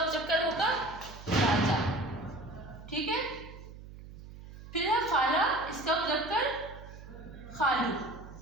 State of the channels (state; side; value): noise; right; hum, 15 dB below the sound